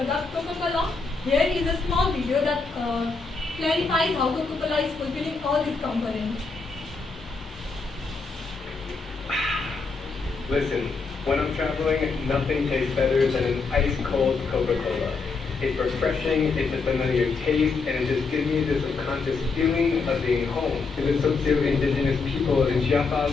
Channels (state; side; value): quieter; right; 4.4 dB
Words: Coca-Cola, here is a small video that clarifies how Coca-Cola is fulfilling all these components. Listen, when I'm traveling, nothing tastes better than an ice-cold Coca-Cola. It's refreshing, it's a familiar taste, and it just gives me this subconscious feeling of being home. To the socio-indigenous people in Chiapas,